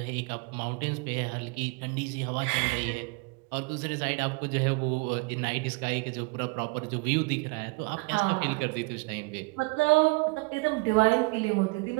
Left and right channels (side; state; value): left; quieter; 27.4 dB